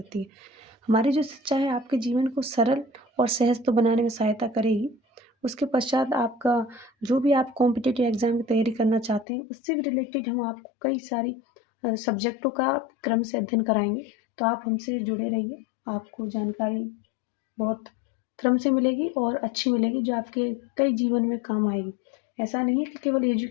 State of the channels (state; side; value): drops out; right; at 9.2 s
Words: है। हमारी जो शिक्षा है आपके जीवन को सरल और सहज तो बनाने में सहायता करेगी। उसके पश्चात आपका जो भी आप कॉम्पिटिटिव एग्ज़ाम की तैयारी करना चाहते हैं उससे भी रिलेटेड हम आपको कई सारी सब्जेक्टों का क्रम से अध्ययन कराएँगे। तो आप हमसे जुड़े रहिए, आपको जानकारी बहुत क्रम से मिलेगी और अच्छी मिलेगी जो आपके कई जीवन में काम आएगी। ऐसा नहीं है कि केवल